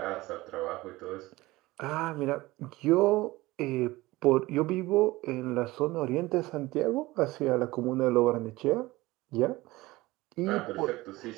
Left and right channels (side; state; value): left; quieter; 19.5 dB